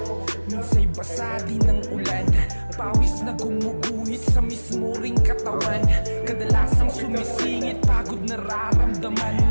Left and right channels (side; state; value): both; inverted; correlation -1.00